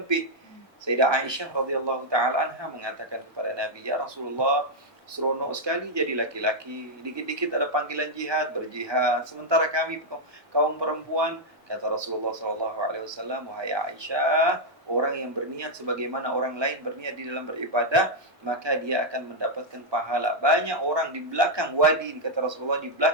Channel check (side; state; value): both; normal; correlation -0.02